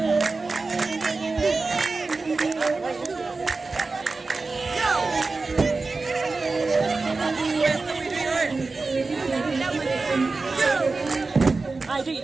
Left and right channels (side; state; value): left; quieter; 3.8 dB